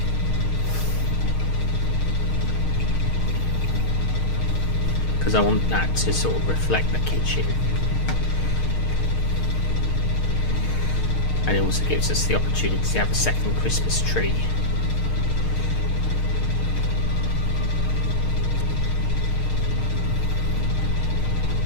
Because I want that to sort of reflect the kitchen, and it also gives us the opportunity to have a second Christmas tree.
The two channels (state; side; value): late; right; 6.5 ms